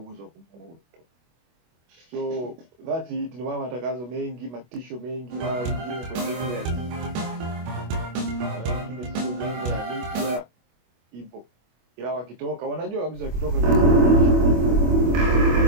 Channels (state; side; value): late; left; 25 ms